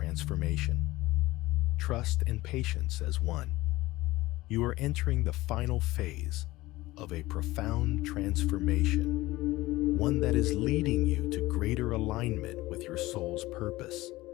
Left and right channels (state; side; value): quieter; right; 18.6 dB